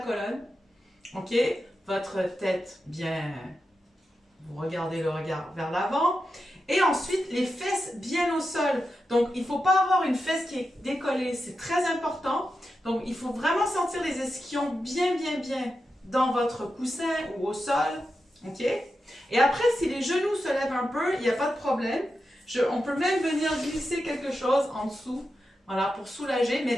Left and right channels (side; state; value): both; normal; correlation 0.89